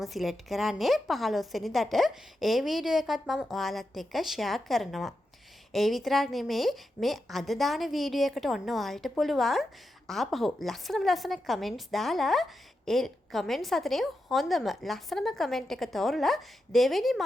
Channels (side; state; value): both; normal; correlation 0.88